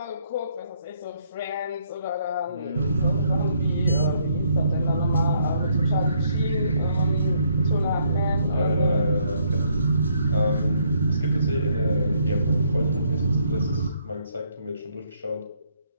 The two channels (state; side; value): inverted; both; correlation -0.70